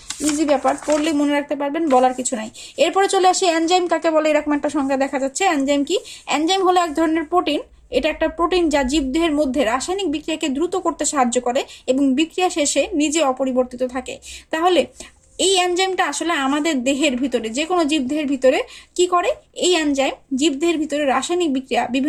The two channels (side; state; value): both; identical; correlation 1.00